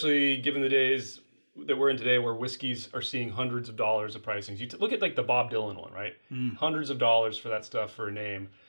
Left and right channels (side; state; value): both; inverted; correlation -1.00